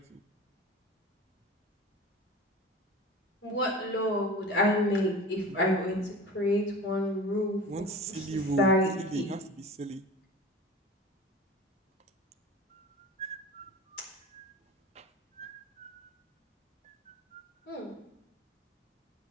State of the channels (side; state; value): both; normal; correlation 0.36